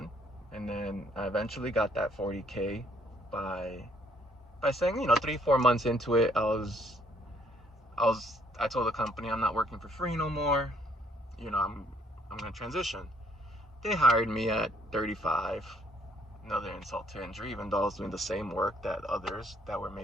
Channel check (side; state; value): both; normal; correlation 0.66